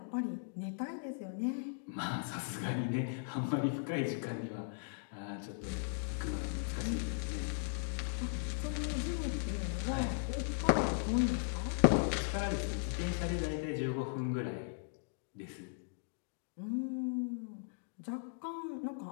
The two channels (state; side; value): silent; right; digital silence